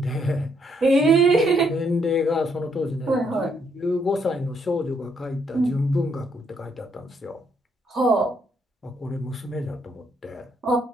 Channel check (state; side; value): normal; both; correlation 0.73